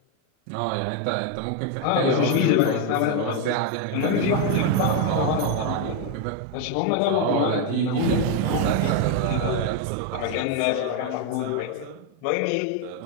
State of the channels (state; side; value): different; both; correlation 0.01